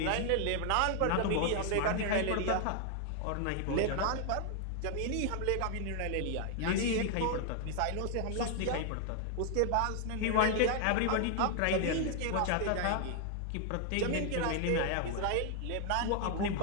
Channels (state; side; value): different; both; correlation 0.00